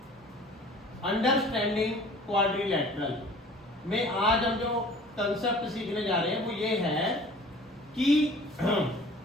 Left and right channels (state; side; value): normal; both; correlation 0.48